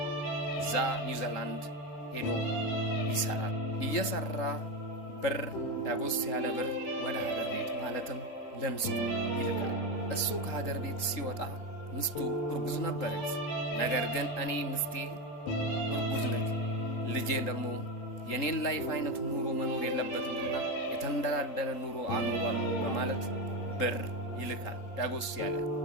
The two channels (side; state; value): right; late; 3.8 ms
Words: እዛ ኒውዚላንድ ሄዶ ይሰራል። እየሰራ ብር ዳጎስ ያለ ብር ወደ ሀገር ቤት ማለትም ለምስቱ ይልካል። እሱ ከሀገር ቤት ሲወጣ ምስቱ እርጉዝ ነበረች። ነገር ግን እኔ ምስቴ እርጉዝ ነች፣ ልጄ ደግሞ የኔን ላይፍ አይነት ኑሮ መኖር የለበትምና የተንደላደለ ኑሮ አኖሯለሁ በማለት ብር ይልካል ዳጎስ ያለ።